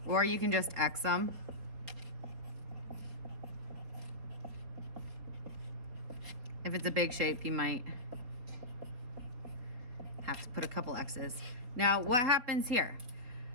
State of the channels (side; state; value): left; late; 4.2 ms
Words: or you can just X them. If it's a big shape, you might have to put a couple X's. Now, what happens here?